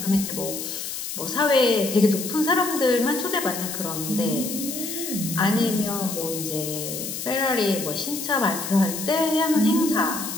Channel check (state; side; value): noise; left; hiss, 6 dB below the sound